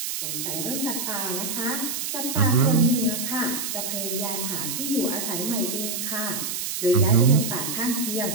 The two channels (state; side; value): noise; right; hiss, 3 dB below the sound